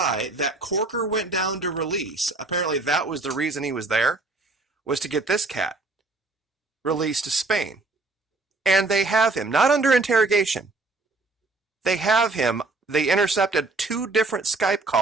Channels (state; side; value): quieter; left; 3.3 dB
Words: that Corker went down to release. Apparently that was the reason he was there, was to get this cat released to Spain. And they have him, not under interrogation. They intercepted two different Skype